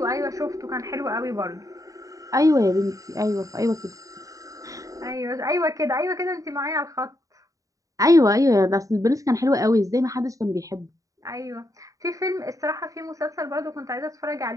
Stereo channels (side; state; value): left; late; 0.16 ms